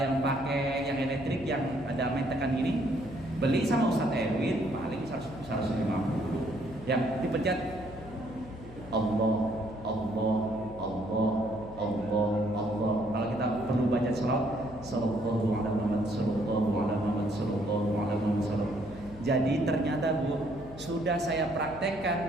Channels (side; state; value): left; noise; hum, 16 dB below the sound